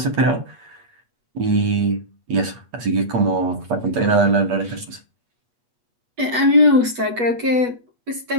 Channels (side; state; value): left; late; 8.2 ms